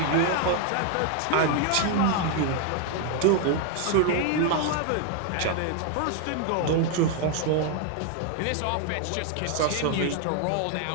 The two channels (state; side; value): different; both; correlation 0.00